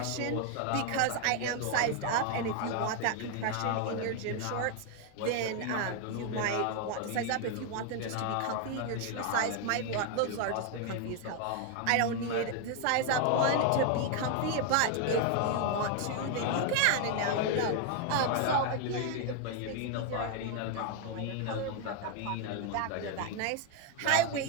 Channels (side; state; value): both; different; correlation 0.01